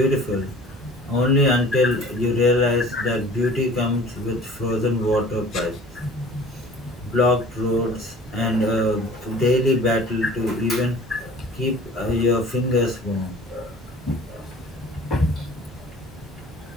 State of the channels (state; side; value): normal; both; correlation 0.46